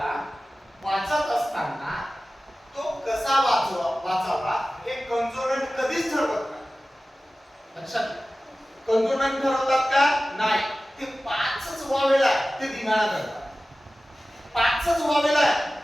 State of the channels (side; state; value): both; normal; correlation 0.96